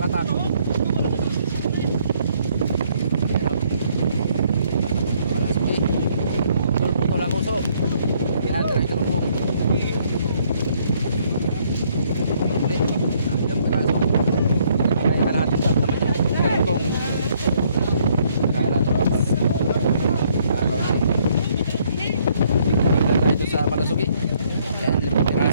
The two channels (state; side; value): inverted; both; correlation -0.66